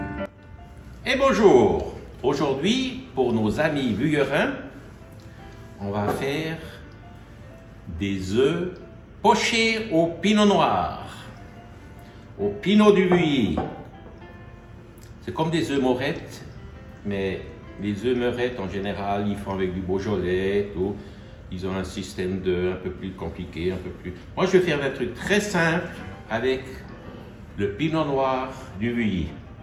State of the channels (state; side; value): identical; both; correlation 1.00